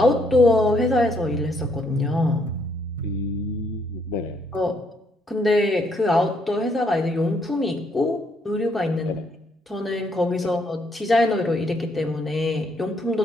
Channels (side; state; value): both; normal; correlation 0.72